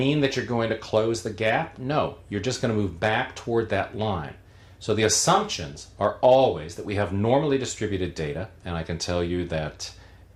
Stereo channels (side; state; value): both; identical; correlation 1.00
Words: that you're going to close the gap? No, you're just going to move back toward that line. So the assumptions are always that we have normally distributed data, and I can tell you that